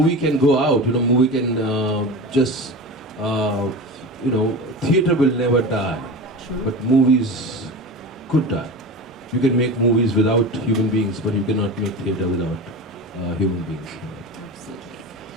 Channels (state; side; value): normal; both; correlation 0.29